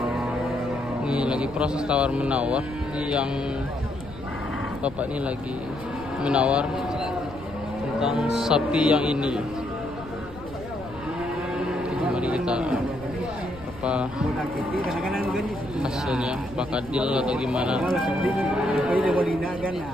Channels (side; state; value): left; noise; rumble, 16 dB below the sound